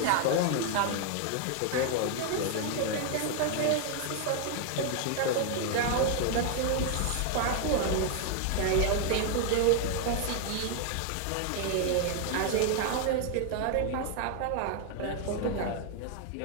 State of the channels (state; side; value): different; both; correlation 0.00